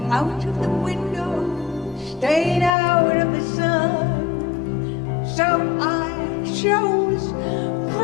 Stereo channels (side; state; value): right; drops out; at 2.7 s